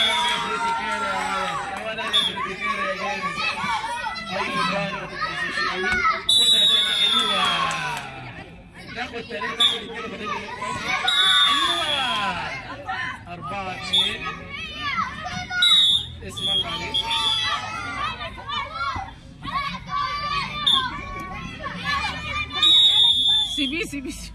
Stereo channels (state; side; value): identical; both; correlation 1.00